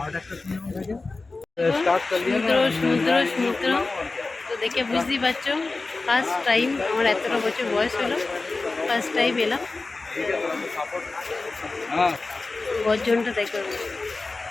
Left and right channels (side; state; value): right; quieter; 3.6 dB